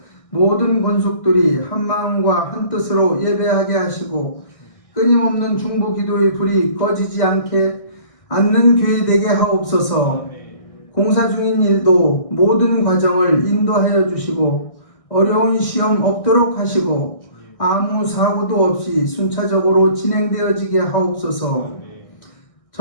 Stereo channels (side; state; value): right; late; 1.6 ms